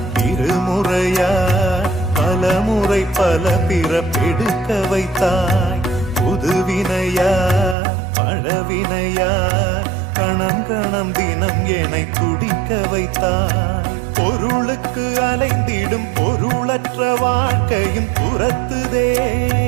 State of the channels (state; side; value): drops out; left; at 7.8 s